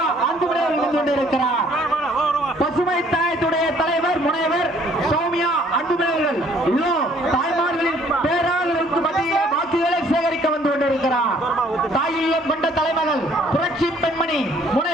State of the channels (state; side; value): normal; both; correlation 0.60